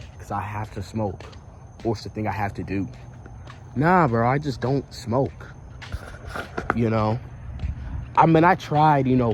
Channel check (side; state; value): both; identical; correlation 1.00